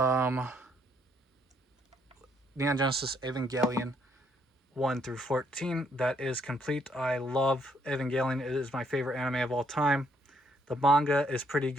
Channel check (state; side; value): normal; both; correlation 0.70